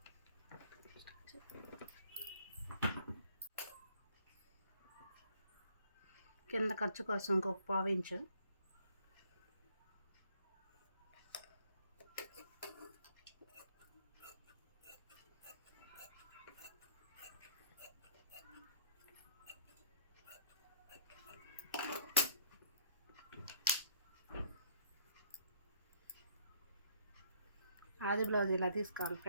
కింద ఖర్చు కోసం ఇంకొక పావు ఇంచు, ఆది బ్లౌజ్ ఇలా తీసుకోవాలి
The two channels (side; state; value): both; inverted; correlation -0.62